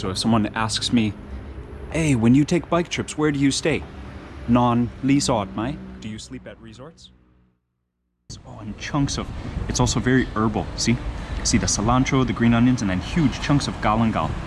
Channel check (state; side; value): identical; both; correlation 1.00